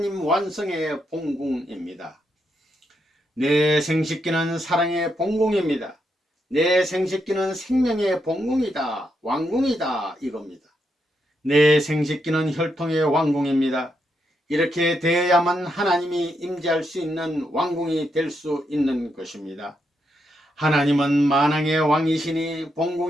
완성의 본궁입니다. 내 생식기는 사랑의 본궁입니다. 내 생식기는 생명의 본궁이다, 왕궁이다, 이겁니다. 내 생식기는 혈통의 왕궁입니다. 이렇게 되어야만 하나님이 임재할 수 있는 왕궁이 될 수 있는 것입니다. 하나님은 만왕의 왕이시니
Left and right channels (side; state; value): both; normal; correlation 0.81